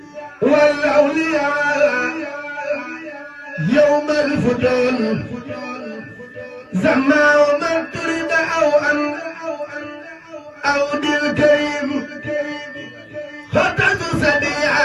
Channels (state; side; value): identical; both; correlation 1.00